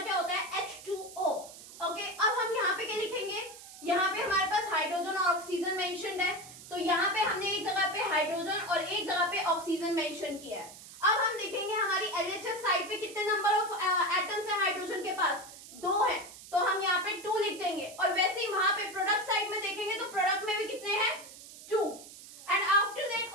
होता है, H2O। ओके, अब हम यहाँ पे क्या लिखेंगे, यहाँ पे हमारे पास हाइड्रोजन और ऑक्सीजन मेंशन्ड है, तो यहाँ पे हमने एक जगह पे हाइड्रोजन और एक जगह पे ऑक्सीजन मेंशन किया है। अब हम देखेंगे हमारी LHS साइड पे कितने नंबर ऑफ एटम्स है हाइड्रोजन के पास, 2 है, तो हम यहाँ पे 2 लिख देंगे। और वैसे ही वहां पे प्रोडक्ट साइड में देखेंगे तो प्रोडक्ट में भी कितने हैं, 2। एंड आफ्टर दैट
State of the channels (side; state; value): right; noise; hiss, 16 dB below the sound